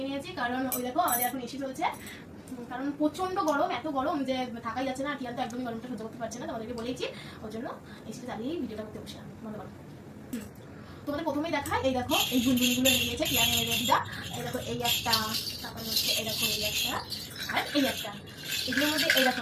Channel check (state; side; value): identical; both; correlation 1.00